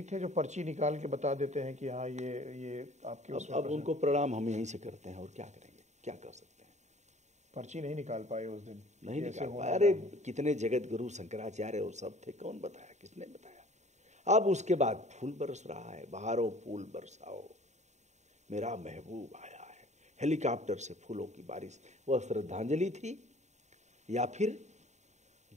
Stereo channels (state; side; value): late; left; 0.34 ms